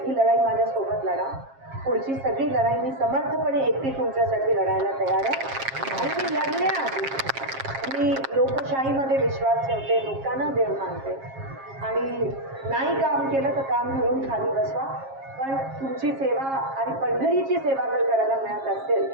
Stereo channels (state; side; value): late; left; 7.4 ms